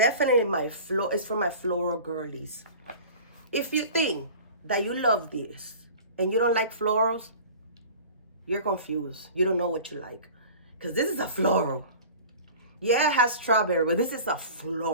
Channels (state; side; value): inverted; both; correlation -0.41